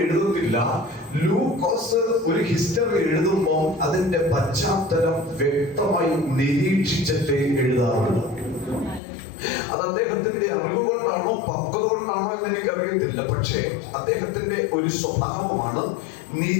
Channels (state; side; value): drops out; right; at 9.0 s